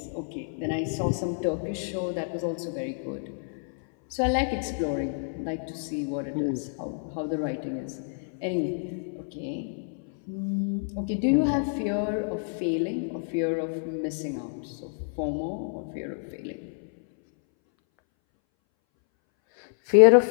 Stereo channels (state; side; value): silent; right; 59 dB below the other